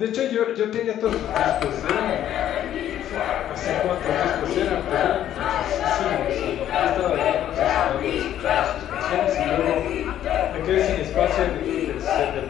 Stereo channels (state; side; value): quieter; right; 11.3 dB